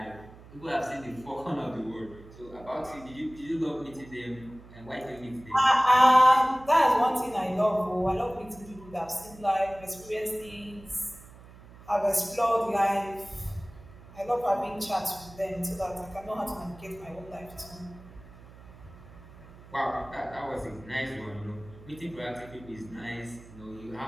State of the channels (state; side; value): noise; right; hum, 20 dB below the sound